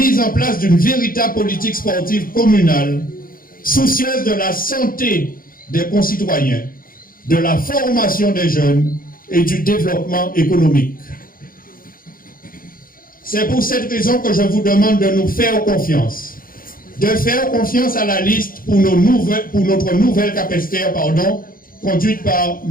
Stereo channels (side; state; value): right; late; 0.41 ms